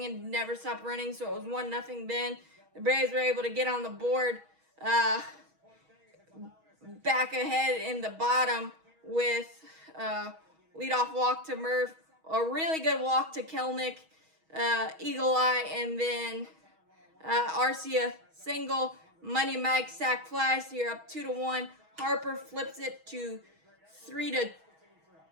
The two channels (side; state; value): left; late; 6.3 ms